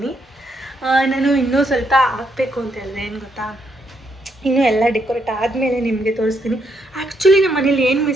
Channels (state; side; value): normal; both; correlation 0.76